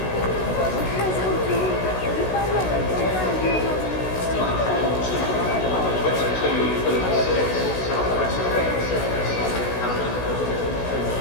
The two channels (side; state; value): right; late; 16 ms